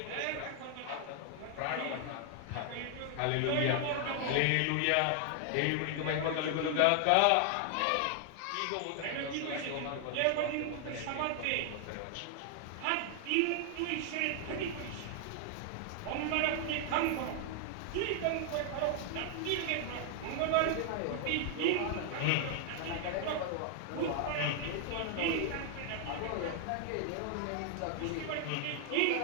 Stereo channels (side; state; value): both; different; correlation 0.00